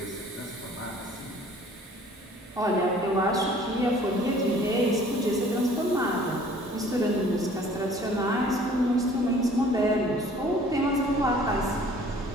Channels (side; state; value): both; normal; correlation 0.53